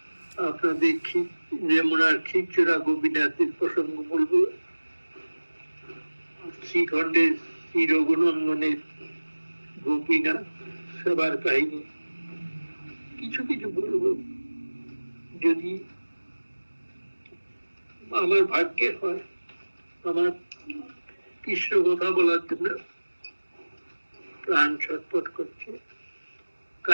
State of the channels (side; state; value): both; inverted; correlation -1.00